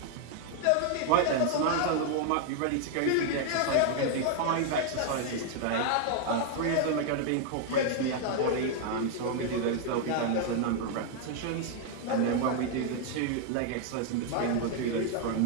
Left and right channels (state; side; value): different; both; correlation 0.00